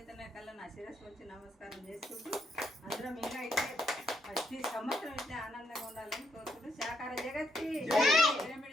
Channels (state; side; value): normal; both; correlation 0.76